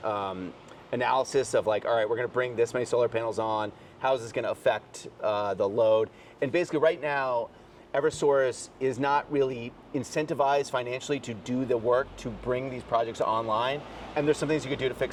analysis of like, all right, we're going to bring this many solar panels on. How is this going to affect the load? And basically right now, Eversource is not really incentivized financially to do the work to bring these projects online. And there's some things you could do to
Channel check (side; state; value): both; identical; correlation 1.00